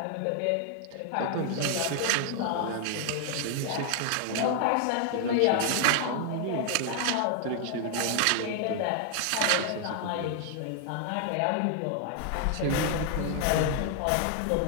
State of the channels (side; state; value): both; different; correlation 0.00